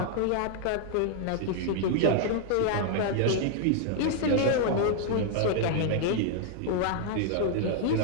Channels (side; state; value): both; different; correlation 0.00